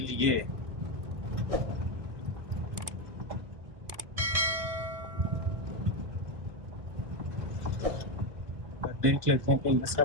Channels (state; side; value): late; left; 1.6 ms